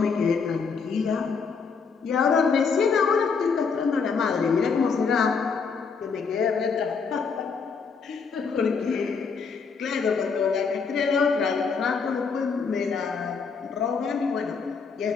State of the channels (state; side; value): quieter; right; 5.4 dB